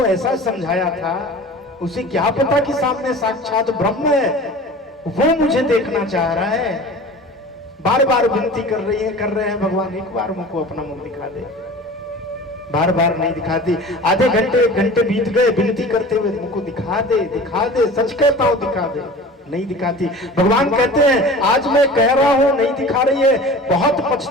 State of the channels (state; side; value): normal; both; correlation 0.39